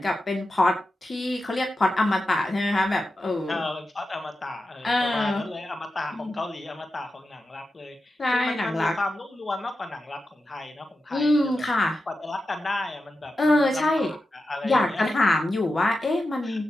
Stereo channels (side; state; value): both; normal; correlation 0.90